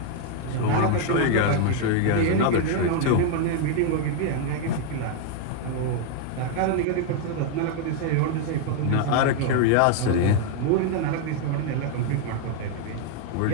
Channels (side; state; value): both; different; correlation 0.00